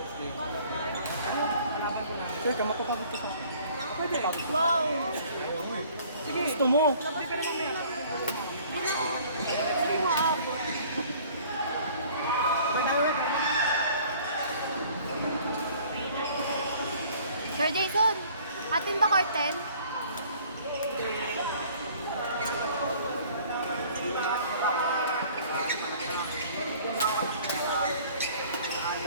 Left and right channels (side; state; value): both; inverted; correlation -0.53